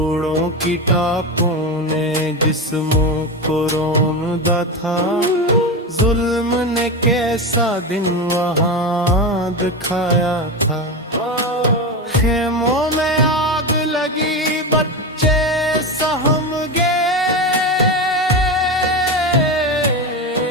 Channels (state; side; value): normal; both; correlation 0.18